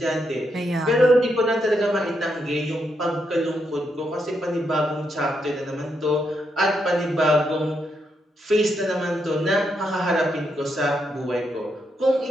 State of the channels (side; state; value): both; normal; correlation 0.80